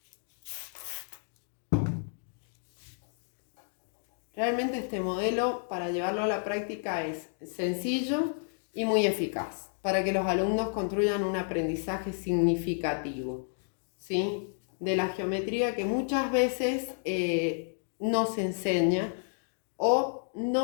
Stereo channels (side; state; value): right; silent; digital silence